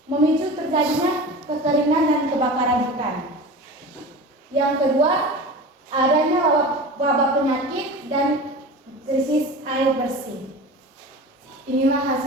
memicu terjadinya kekeringan dan kebakaran hutan. Yang kedua, adanya wabah penyakit dan krisis air bersih. Inilah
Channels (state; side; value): normal; both; correlation 0.33